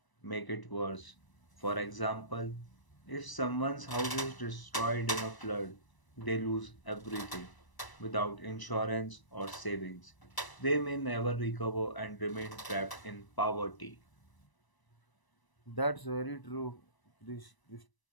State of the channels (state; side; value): late; right; 1.0 ms